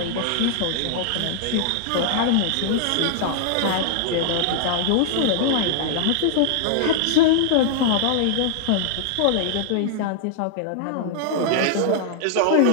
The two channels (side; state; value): both; different; correlation -0.01